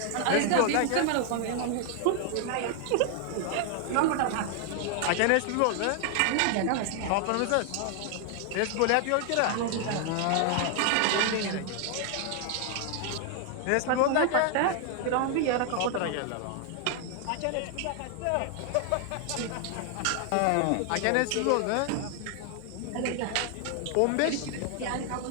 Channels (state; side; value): different; both; correlation 0.00